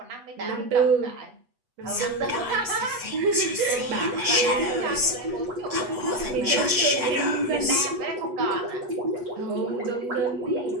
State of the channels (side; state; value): left; late; 8.2 ms